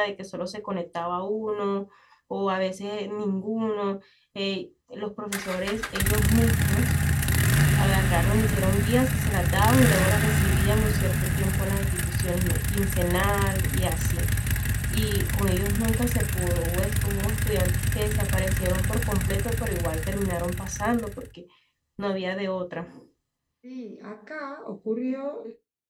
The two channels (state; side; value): identical; both; correlation 1.00